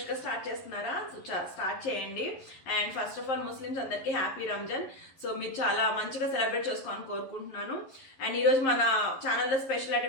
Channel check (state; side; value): late; right; 11 ms